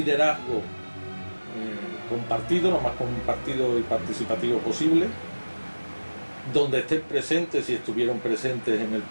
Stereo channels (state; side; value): inverted; both; correlation -1.00